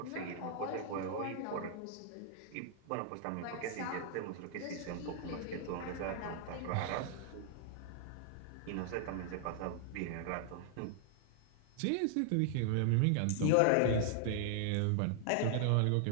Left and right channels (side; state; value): both; different; correlation 0.00